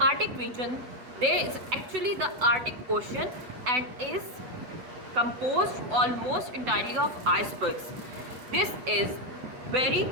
Arctic region, there is actually the Arctic Ocean and is composed almost entirely of icebergs. This is very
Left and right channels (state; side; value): late; left; 7.9 ms